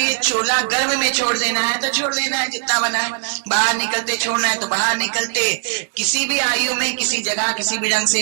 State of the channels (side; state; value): left; silent; 66 dB below the other